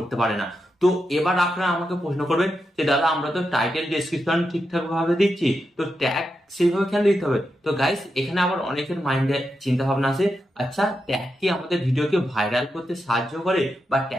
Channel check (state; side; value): normal; both; correlation 0.87